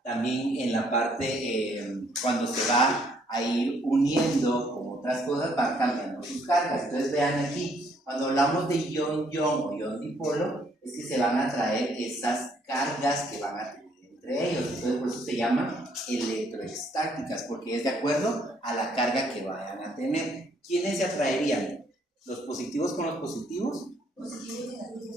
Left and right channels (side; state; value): both; normal; correlation 0.67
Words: también en la parte, cuando se va a ir uniendo con otras cosas, va cambiando sus cargas? Entonces vean aquí, cuando hablamos de ion-ion o ion-dipolo, es que se van a traer esas cargas que van a tener entre ellos. Entonces por eso se llaman electroestáticas, porque es de acuerdo a la carga que vayan a tener. ¿Quiénes se atraerían? ¿Los positivos con los positivos?